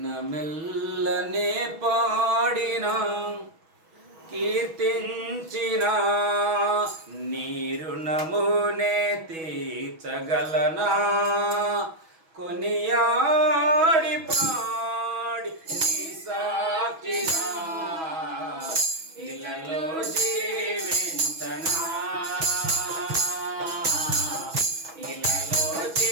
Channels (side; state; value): left; late; 6.2 ms